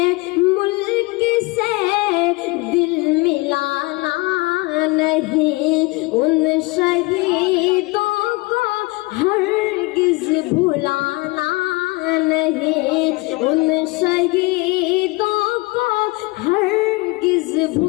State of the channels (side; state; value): right; quieter; 24.4 dB